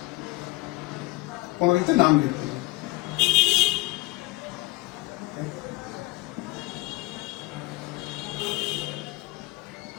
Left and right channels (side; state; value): right; quieter; 20.8 dB